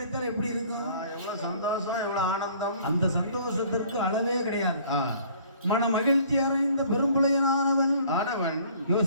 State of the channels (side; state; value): both; inverted; correlation -0.55